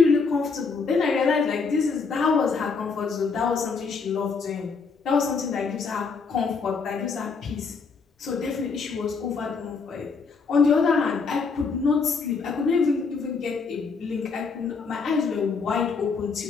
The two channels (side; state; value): right; quieter; 4.9 dB